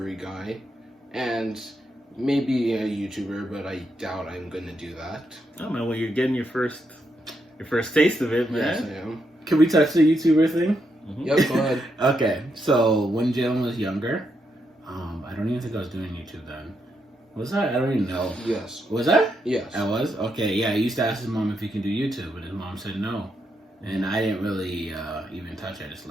guy, and maybe a YouTuber, but I doubt I'm gonna do that. Oh man, well you're getting your first taste of it, Yes, man. I am. Can we touch the YouTuber thing? Mhm. Yep, go ahead. Okay, so when Jaelyn was younger, I don't even think I was doing YouTube then. Was I? I don't even know. Yes. Was I? Yes. I was? Okay, yeah, I used to ask his mom if he can do YouTube, and his mom said no. And I didn't really even touch it, I just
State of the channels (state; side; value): normal; both; correlation 0.80